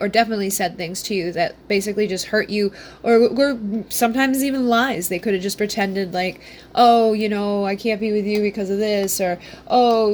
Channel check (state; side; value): identical; both; correlation 1.00